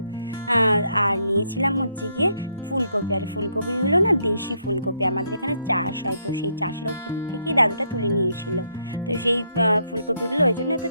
আর নিয়েছিলাম হচ্ছে গিয়ে ফুলকপি। আর ফুলকপিগুলো না দেশি ফুলকপি, আমাদের এখানে চাষ হয়, তো সেই চাষেরও ক্ষেত্র থেকেই দাদুটা তুলে নিয়েছিল। তো সেই ফুলকপিগুলো ওই জন্য এত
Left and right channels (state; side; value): inverted; both; correlation -0.74